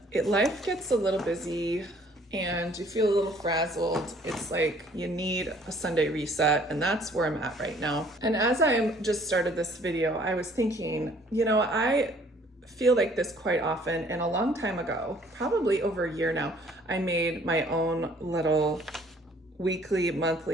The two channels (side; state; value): both; normal; correlation 0.58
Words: life gets a little busy and you feel a little frazzled, it's like you need a Sunday reset, and that's where I'm at right now. And as I just started this video, I was thinking, you know, I feel like this quite often, and a long time ago, probably over a year now, I made my own little weekly,